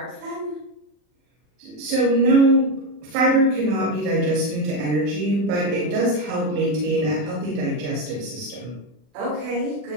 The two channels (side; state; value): left; late; 40 ms